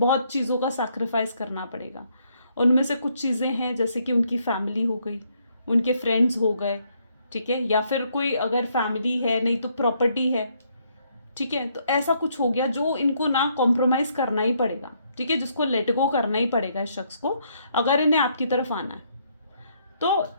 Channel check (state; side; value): inverted; both; correlation -0.71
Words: चीज़ों का सैक्रिफाइस करना पड़ेगा। उनमें से कुछ चीज़ें हैं जैसे कि उनकी फैमिली हो गई, उनके फ्रेंड्स हो गए, ठीक है, या फिर कोई अगर फैमिली है नहीं तो प्रॉपर्टी है, ठीक है। तो ऐसा कुछ हो गया जो इनको ना कॉम्प्रोमाइज़ करना ही पड़ेगा, ठीक है, जिसको लेट गो करना ही पड़ेगा इस शख्स को अगर इन्हें आपकी तरफ आना है। तो